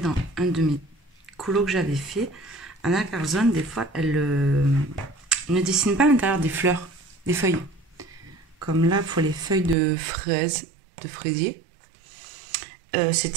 un de mes colos que j'avais fait. Anna Carzon, des fois, elle ne dessine pas à l'intérieur des fleurs, des feuilles. Comme là, pour les feuilles de fraises, de fraisier.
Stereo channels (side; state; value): left; drops out; at 9.8 s